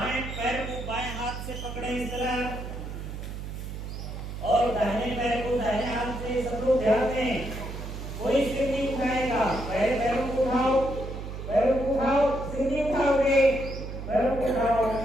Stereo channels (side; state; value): right; noise; hum, 8 dB below the sound